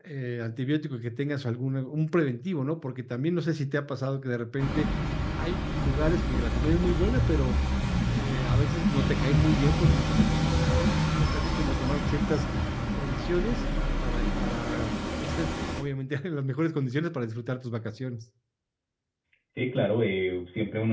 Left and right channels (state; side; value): identical; both; correlation 1.00